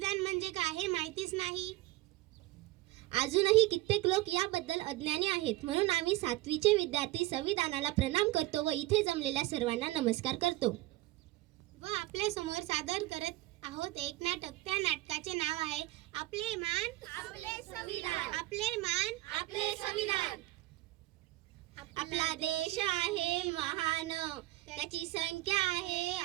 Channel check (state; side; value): quieter; left; 18.2 dB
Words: म्हणजे काय हे माहितीच नाही. अजूनही कित्येक लोक याबद्दल अज्ञानी आहेत. म्हणून आम्ही 7वीचे विद्यार्थी संविधानाला प्रणाम करतो व इथे जमलेल्या सर्वांना नमस्कार करतो. व आपल्या समोर सादर करत आहोत एक नाटक. त्या नाटकाचे नाव आहे आपले मान आपले संविधान, आपले मान आपले संविधान. आपला देश आहे महान, त्याची संख्या आहे